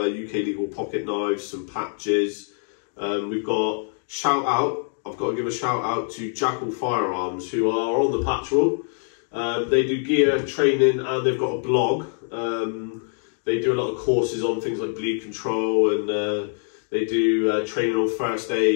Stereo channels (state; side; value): silent; right; 58 dB below the other